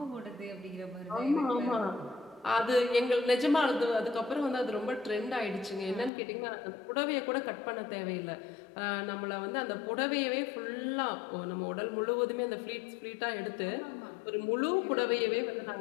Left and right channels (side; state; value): right; drops out; at 6.1 s